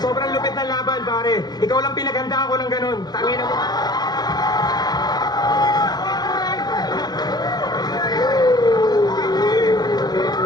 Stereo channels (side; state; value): right; late; 0.19 ms